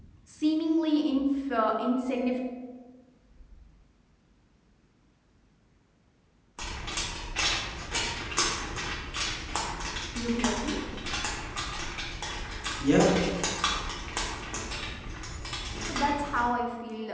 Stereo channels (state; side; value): identical; both; correlation 1.00